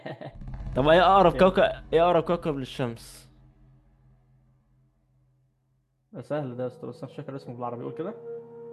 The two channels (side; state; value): both; identical; correlation 1.00